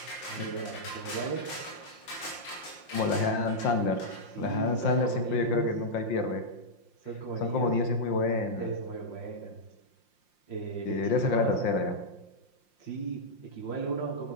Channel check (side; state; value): right; late; 5.7 ms